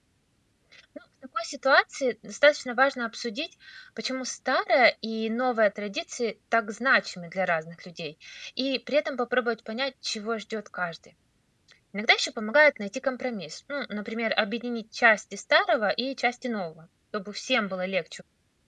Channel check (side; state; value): both; identical; correlation 1.00